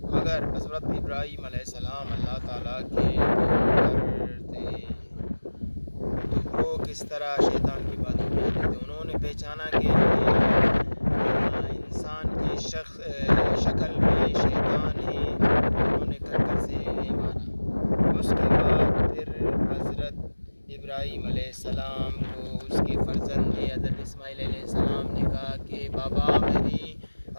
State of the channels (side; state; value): both; inverted; correlation -1.00